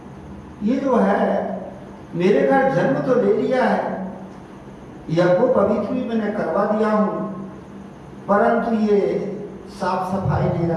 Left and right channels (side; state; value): both; identical; correlation 1.00